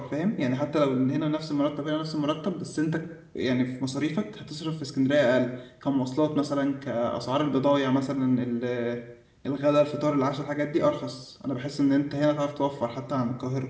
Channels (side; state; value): both; identical; correlation 1.00